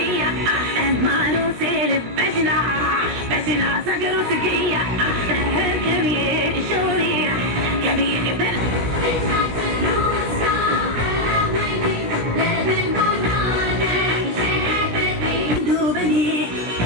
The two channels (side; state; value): left; late; 17 ms